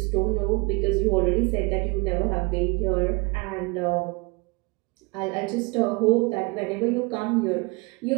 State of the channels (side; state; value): left; quieter; 27.4 dB